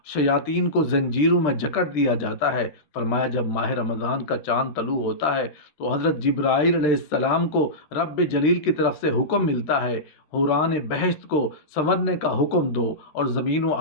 شیاطین کو زنجیروں میں جکڑ دیا جاتا ہے۔ فرمایا جب ماہ رمضان کا چاند طلوع ہوتا ہے تو حضرت جبرائیل علیہ السلام کو رب جلیل کی طرف سے حکم ملتا ہے، حوران بہشت کو سنورنے کا حکم دو اور زمین و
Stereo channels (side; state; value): right; late; 13 ms